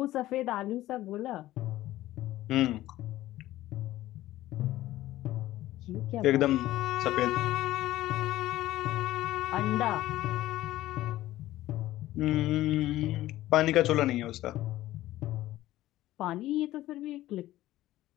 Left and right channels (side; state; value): right; quieter; 15.4 dB